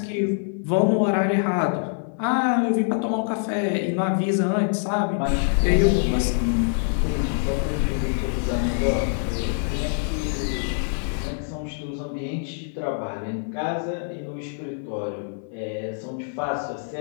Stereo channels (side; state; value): right; silent; 59 dB below the other